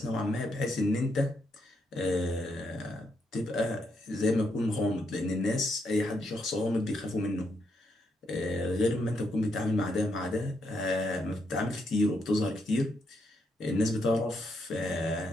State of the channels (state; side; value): normal; both; correlation 0.78